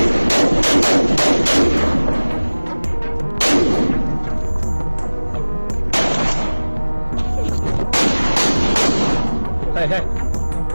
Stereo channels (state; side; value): inverted; both; correlation -1.00